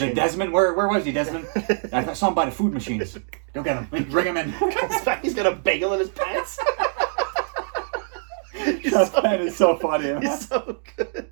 He's like, Desmond, where was he, Desmond? I saw him by the food machines. Go get him. Bring him in. He's got a bagel in his pants. That is so funny. He's so good.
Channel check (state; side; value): silent; left; digital silence